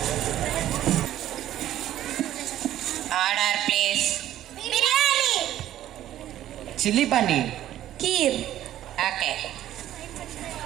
Order please. Biryani. Chilli paneer. Kheer. Okay.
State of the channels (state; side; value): quieter; left; 12.6 dB